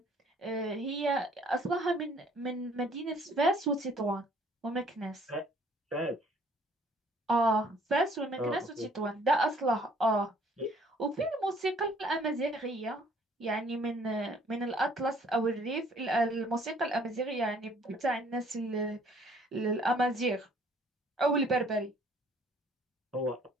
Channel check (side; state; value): both; normal; correlation 0.59